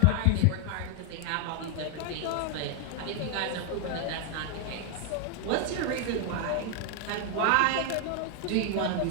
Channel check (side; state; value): both; different; correlation 0.00